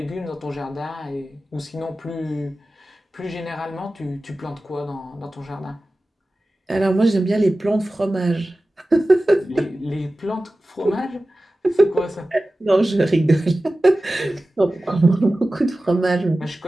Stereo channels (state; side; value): normal; both; correlation 0.95